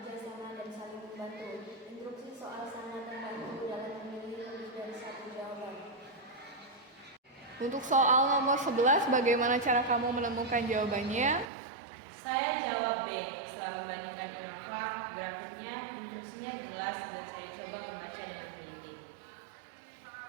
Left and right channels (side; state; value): left; drops out; at 11.5 s